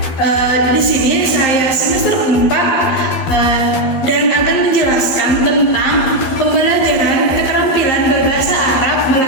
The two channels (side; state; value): right; late; 12 ms